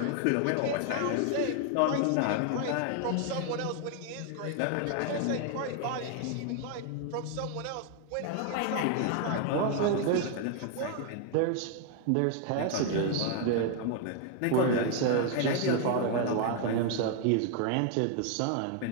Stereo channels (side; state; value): both; different; correlation 0.00